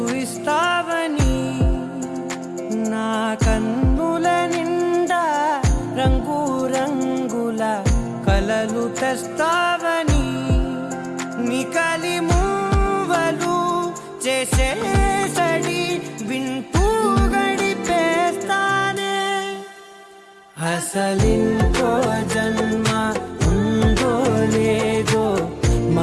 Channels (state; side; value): identical; both; correlation 1.00